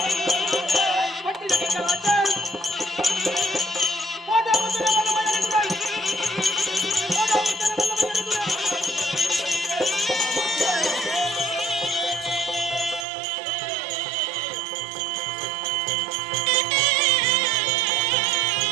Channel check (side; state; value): left; drops out; at 13.1 s